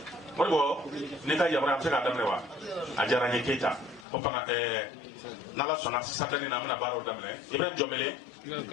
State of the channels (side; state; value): right; drops out; at 4.0 s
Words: ne ka yamaruya an bɛ se k'a daminɛ wa a diyara n ye Keita ko fana n'Ala sɔnna Saturday na an bɛna baaraw daminɛ Ibrahim Jɔnbele